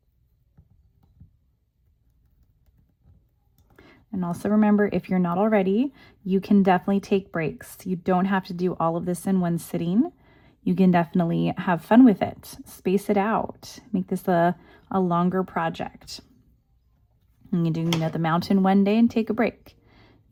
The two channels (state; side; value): identical; both; correlation 1.00